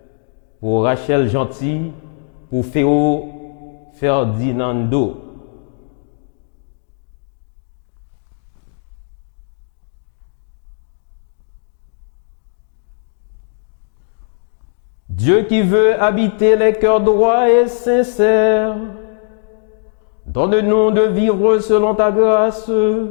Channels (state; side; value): silent; right; digital silence